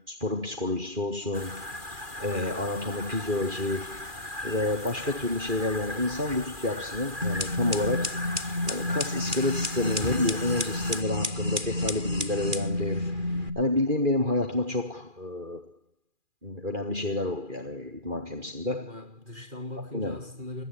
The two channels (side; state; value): left; late; 2.4 ms